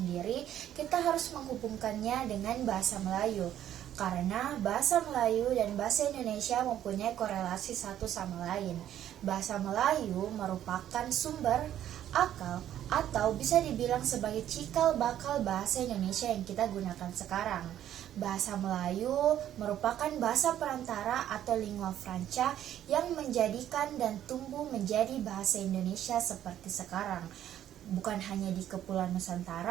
kita harus menghubungkannya dengan bahasa Melayu. Karena bahasa Melayu dan bahasa Indonesia mempunyai korelasi satu sama lain. Bahasa Melayu merupakan sumber, akal, atau bisa dibilang sebagai cikal bakal bahasa Indonesia yang kita gunakan sekarang. Bahasa Melayu merupakan bahasa perantara atau lingua franca yang menjadikan dan tumbuh menjadi bahasa Indonesia seperti sekarang. Bukan hanya di Kepulauan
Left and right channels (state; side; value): quieter; left; 11.3 dB